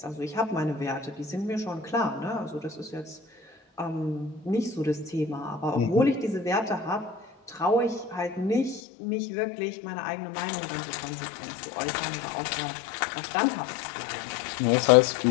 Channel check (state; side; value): drops out; right; at 8.8 s